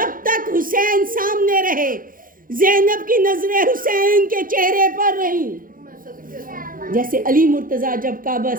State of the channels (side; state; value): left; late; 0.40 ms